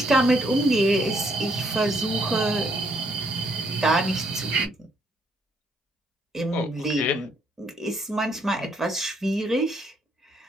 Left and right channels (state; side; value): normal; both; correlation 0.70